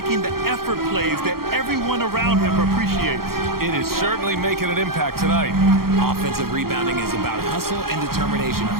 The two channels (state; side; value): late; left; 0.93 ms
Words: the effort plays that everyone around him appreciates. It is certainly making an impact tonight. Offensive rebounding is about hustle and determination.